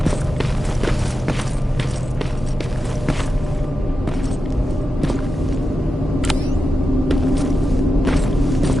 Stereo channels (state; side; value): normal; both; correlation 0.90